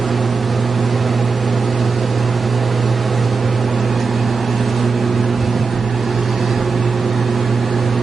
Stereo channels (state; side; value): quieter; left; 4.8 dB